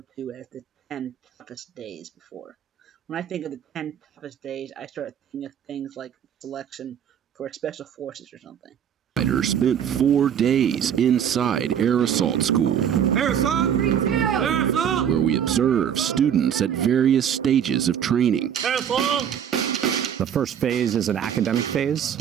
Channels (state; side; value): quieter; left; 8.9 dB